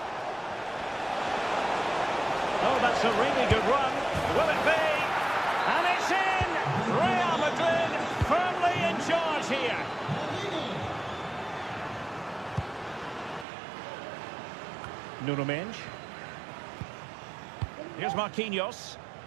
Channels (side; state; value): left; drops out; at 13.5 s